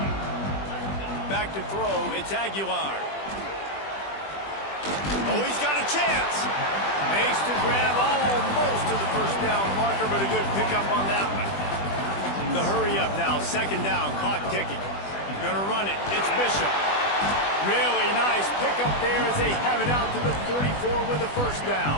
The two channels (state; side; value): late; right; 20 ms